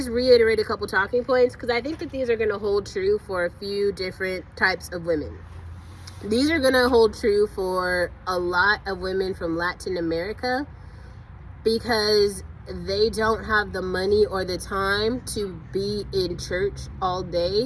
reiterate a couple talking points because I think that these are going to hold true for a few different types of women. These are going to hold true for a lot of women from Latin America because they don't have the money or the time to be in church all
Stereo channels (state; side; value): identical; both; correlation 1.00